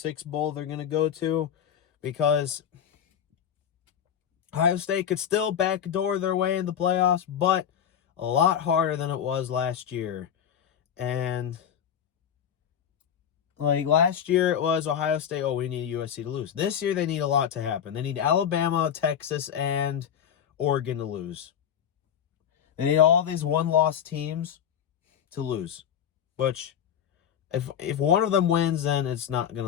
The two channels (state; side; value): quieter; right; 8.8 dB